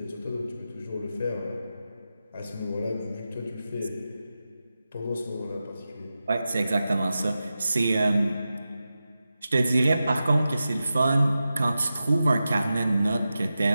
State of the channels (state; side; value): inverted; both; correlation -0.92